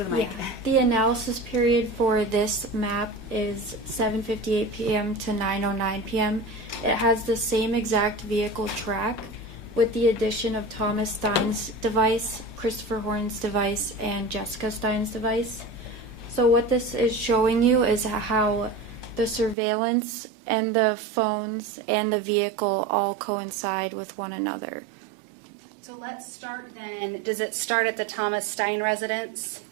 the mic. Yeah. The analysis period for this map is 7:58 p.m. to 9:09 p.m. It has the same exact vehicle track with the addition of Thomas Stein's device, Christopher Horne's device, and Jessica Stein's device. So what this is showing you is how the surveillance and the phones and the vehicle all coincide with one another. So let's start then. Does it start at the Thomas Stein residence?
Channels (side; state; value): left; drops out; at 19.6 s